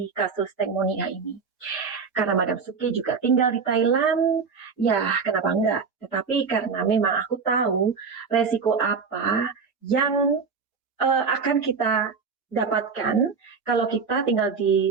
kasus Teng Monida ini. Karena Madam Suki juga tinggal di Thailand, ya kenapa enggak? Tetapi karena memang aku tahu resiko apa yang akan kita dapatkan kalau kita tinggal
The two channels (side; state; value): left; quieter; 5.4 dB